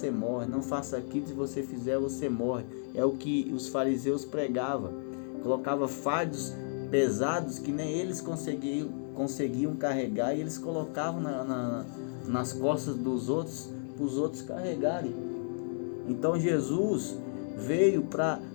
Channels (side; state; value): right; silent; digital silence